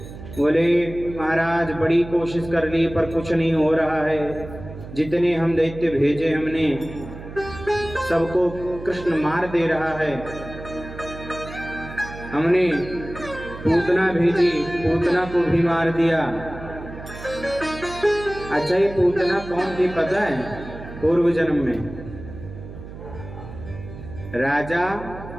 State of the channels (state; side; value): noise; right; hum, 13 dB below the sound